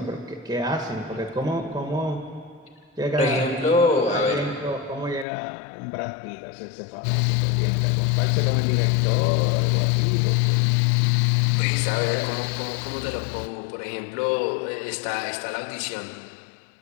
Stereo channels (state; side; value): drops out; right; at 5.2 s